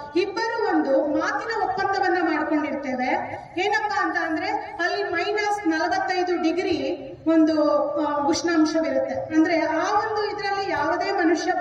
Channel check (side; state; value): both; identical; correlation 1.00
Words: ಇಬ್ಬರು ಒಂದು ಮಾತಿನ ಒಪ್ಪಂದವನ್ನ ಮಾಡ್ಕೊಂಡಿರ್ತೇವೆ. ಏನಪ್ಪಾ ಅಂತ ಅಂದ್ರೆ ಅಲ್ಲಿ -45 ಡಿಗ್ರಿ ಒಂದು ಉಷ್ಣಾಂಶವಿರುತ್ತೆ. ಅಂದ್ರೆ ಆ ಒಂದು ಇದರಲ್ಲಿ ಯಾವುದೇ ಮನುಷ್ಯ